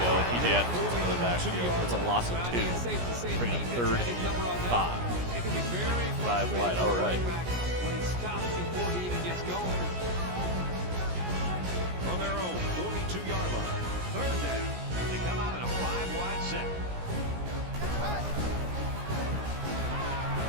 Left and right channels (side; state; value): left; late; 17 ms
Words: PJ Adams gets into the backfield. It's a loss of 2. Bringing up 3rd and 5. 5 wide. All right. When he stops before he even gets going. From their own 42-yard line, 3rd down. They come out in a 5-wide set.